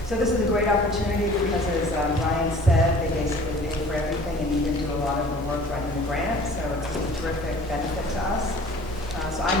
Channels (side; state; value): both; normal; correlation 0.48